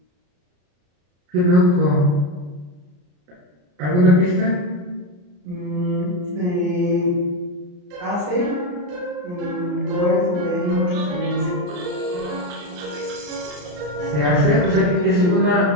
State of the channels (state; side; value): late; left; 34 ms